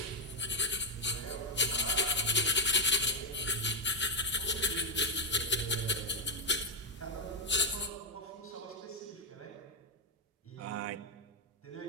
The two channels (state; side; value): normal; both; correlation 0.00